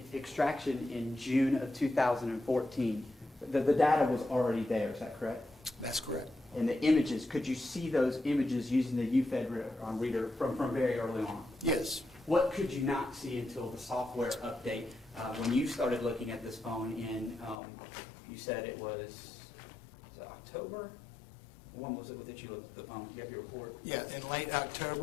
extraction in June of 2014, the data was already there, is that correct? That's correct. And the images, could you see those images using the UFED reader from very early on? Yes. What could you not see until the software update? When you started looking at this phone in, you said it was October? When was it that you looked at the phone? You have your report? Yeah, in late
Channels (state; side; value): drops out; right; at 17.6 s